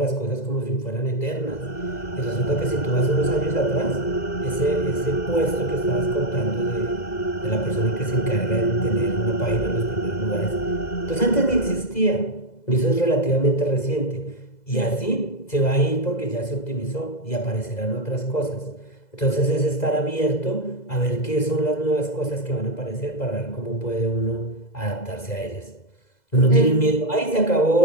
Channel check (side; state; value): right; late; 2.0 ms